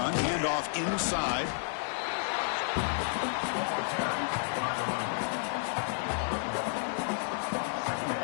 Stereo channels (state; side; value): silent; right; 57 dB below the other